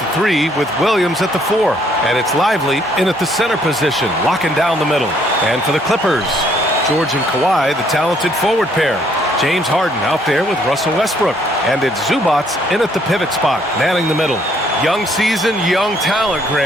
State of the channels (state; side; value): normal; both; correlation 0.66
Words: 3 with Williams at the 4. And it's Lively in at the center position, locking down the middle. And for the Clippers, George and Kawhi, the talented forward pair. James Harden out there with Russell Westbrook. And it's Zubats in at the pivot spot, manning the middle. Young season, young talent,